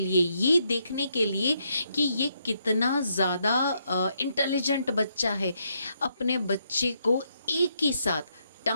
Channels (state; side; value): inverted; both; correlation -0.76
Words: ये देखने के लिए कि ये कितना ज़्यादा इंटेलिजेंट बच्चा है, अपने बच्चे को एक ही साथ